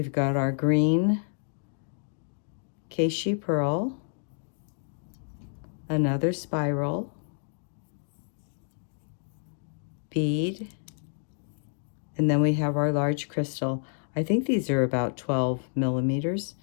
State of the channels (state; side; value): silent; right; digital silence